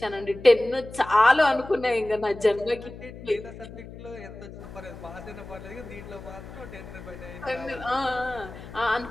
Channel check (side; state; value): left; noise; hum, 14 dB below the sound